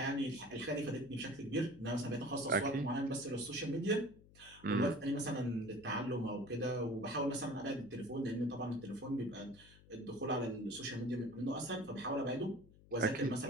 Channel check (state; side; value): noise; left; hum, 23 dB below the sound